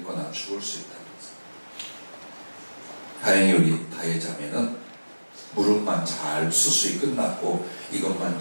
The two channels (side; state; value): both; inverted; correlation -1.00